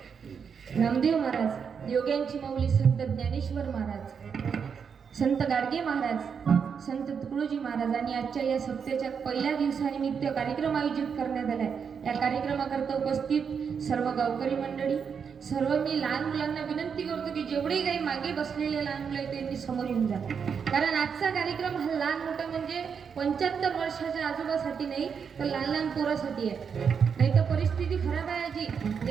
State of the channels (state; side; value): quieter; left; 6.6 dB